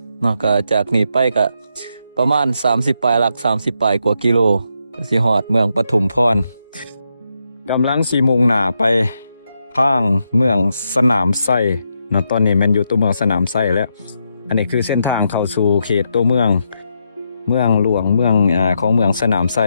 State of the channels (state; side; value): inverted; both; correlation -0.81